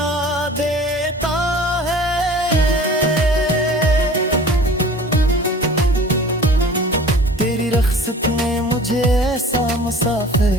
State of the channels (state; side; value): normal; both; correlation 0.44